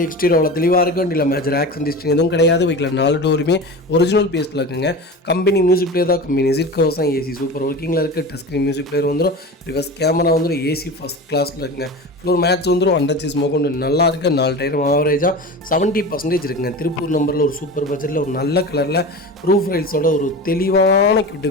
எக்ஸ்டீரியர் அவ்வளோ தெளிவாக இருக்கும். வண்டியில் மேஜர் ஆக்சிடென்ட் ஹிஸ்ட்ரி எதுவும் கிடையாது. வெஹிக்கில் 4 டோருமே ஒரிஜினல் பேஸில் இருக்குங்க. கம்பெனி மியூசிக் பிளேயர் தான். கம்பெனி சீட் கவர்ஸ் தான். ஏசி சூப்பர் ஒர்க்கிங்கில் இருக்குது. டச் ஸ்க்ரீன் மியூசிக் பிளேயர் வந்துடும். ரிவர்ஸ் கேமரா வந்துடும். ஏசி ஃபஸ்ட் கிளாஸில் இருக்குங்க. ஃப்ளோர் மேட்ச் வந்துடும். அண்டர்ச்சேஸ் மோகொண்டு நல்லா இருக்குது. 4 டயரும் ஆவரேஜாக 70% இருக்குங்க. திருப்பூர் நம்பரில் ஒரு சூப்பர் பட்ஜெட்டில் ஒரு நல்ல கலரில் ரூஃப் ரைல்ஸோட ஒரு தெளிவான கியூட்டு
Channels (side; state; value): both; normal; correlation 0.30